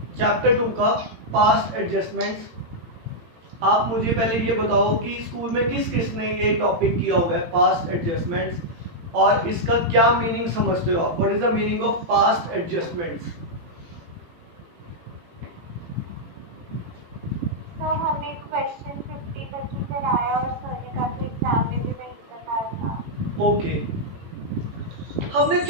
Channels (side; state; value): left; late; 18 ms